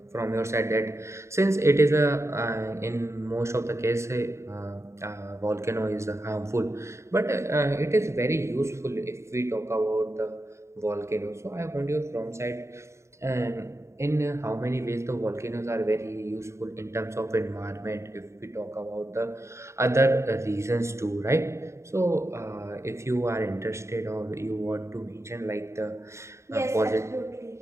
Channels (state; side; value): late; left; 0.14 ms